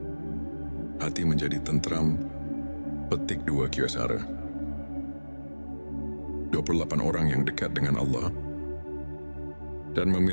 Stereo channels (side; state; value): both; inverted; correlation -1.00